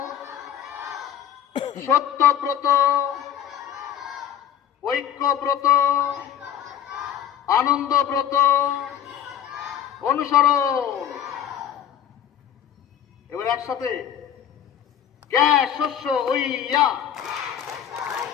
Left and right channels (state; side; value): quieter; right; 9.8 dB